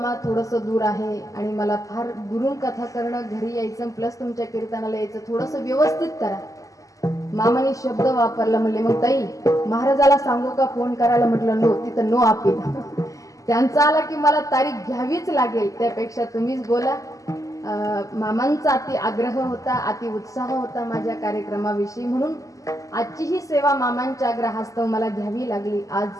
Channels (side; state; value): right; late; 0.16 ms